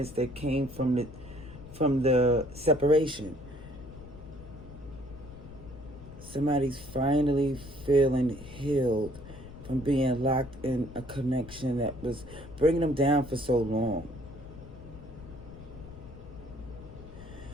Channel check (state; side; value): noise; left; rumble, 16 dB below the sound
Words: that came from the separation. Somebody's finally feeling healed from being locked in a connection that was bringing them down for so long.